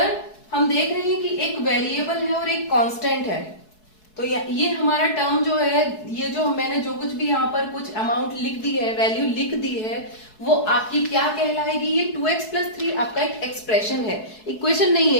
हम देख रहे हैं कि एक वेरिएबल है और एक कांस्टेंट है। तो ये हमारा टर्म जो है, ये जो मैंने जो कुछ भी यहाँ पर कुछ अमाउंट लिख दी है, वैल्यू लिख दी है, वो आपकी क्या कहलाएगी, ये 2x प्लस 3 आपका एक एक्सप्रेशन है, इक्वेशन नहीं है।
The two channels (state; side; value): late; right; 4.7 ms